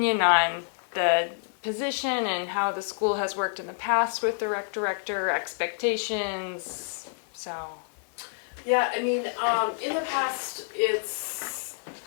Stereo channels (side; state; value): right; silent; 59 dB below the other